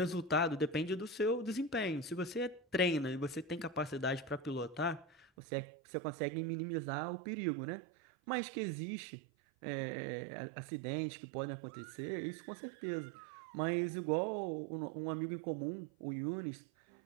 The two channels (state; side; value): drops out; left; at 5.3 s